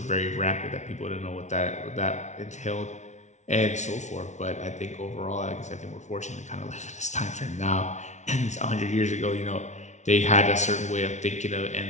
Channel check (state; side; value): late; right; 0.34 ms